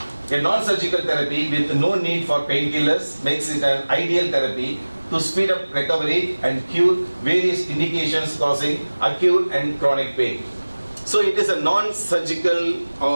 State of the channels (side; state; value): both; inverted; correlation -1.00